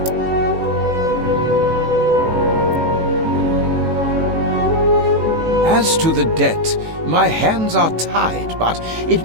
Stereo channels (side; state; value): left; late; 18 ms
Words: As to the debt, my hands are tied, but it